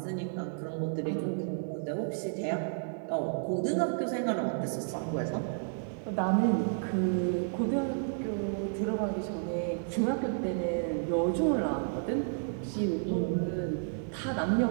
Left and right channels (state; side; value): silent; left; digital silence